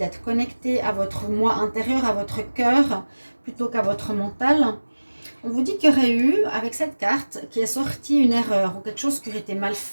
connecté à votre moi intérieur, à votre cœur, plutôt qu'à votre mental. On vous dit qu'il y aurait eu, avec cette carte, qui est sortie une erreur ou quelque chose qui aurait été mal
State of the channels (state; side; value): inverted; both; correlation -1.00